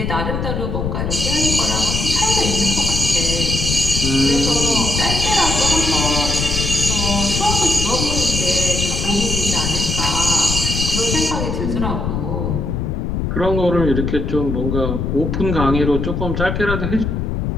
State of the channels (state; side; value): noise; left; rumble, 1 dB below the sound